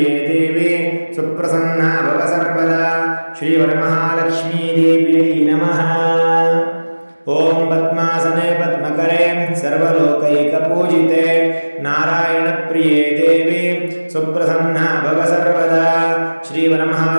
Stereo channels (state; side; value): inverted; both; correlation -1.00